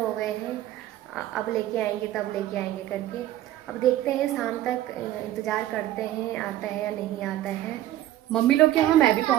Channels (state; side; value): quieter; left; 13.8 dB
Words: गए हैं, अब लेके आएंगे तब लेके आएंगे करके। अब देखते हैं शाम तक, इंतज़ार करते हैं आता है या नहीं आता है। मम्मी लोग के वहाँ मैं भी